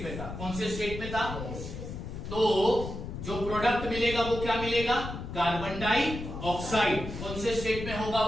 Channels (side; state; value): left; noise; rumble, 8 dB below the sound